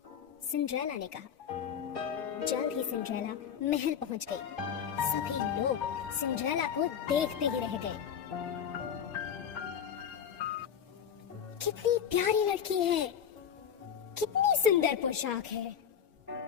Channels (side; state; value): right; quieter; 8.2 dB